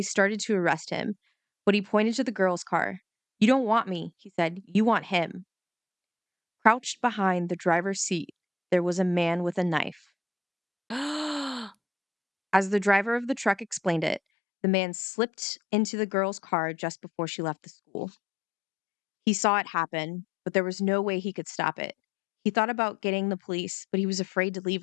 started to arrest him, but he pointed to the girl's car. You don't want me, he said. You want him. Crouched behind the driver's seat, there was a man with a knife. As the driver of the truck explained it, the man slipped into the girl's car just before she left the school. He saw it happen, but there was no way he could stop it. He thought about getting the police, but he was afraid to leave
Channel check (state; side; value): drops out; right; at 14.2 s